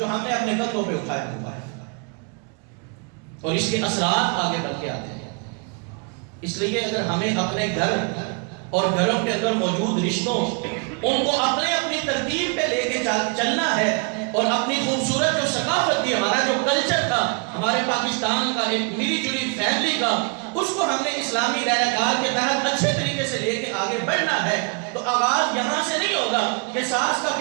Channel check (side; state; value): left; quieter; 33.8 dB